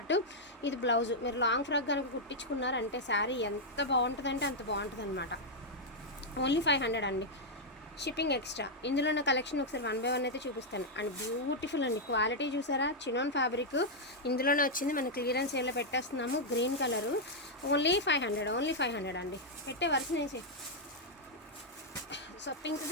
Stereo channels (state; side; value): normal; both; correlation -0.03